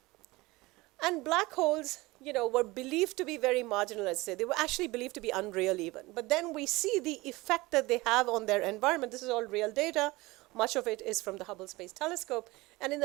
And black holes, you know, were believed to be very marginal, let's say. They were actually believed to be unreal even. But then we see the effect that they have on their environment. This is all real data. Much of it is from the Hubble Space Telescope. And in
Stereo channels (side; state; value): left; quieter; 21.5 dB